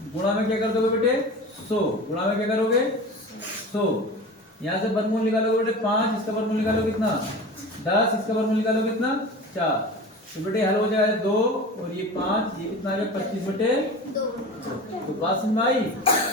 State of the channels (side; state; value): both; normal; correlation 0.33